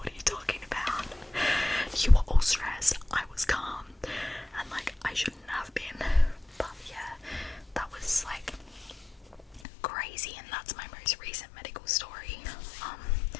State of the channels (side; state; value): right; drops out; at 9.6 s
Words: are you talking about? You were all stressed, I was calm, and, like, I shouldn't have been. But yeah, that was, like, crazy, and that's my most recent medical story.